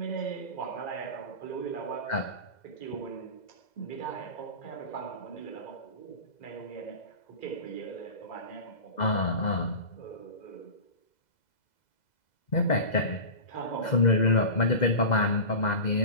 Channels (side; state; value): right; late; 2.0 ms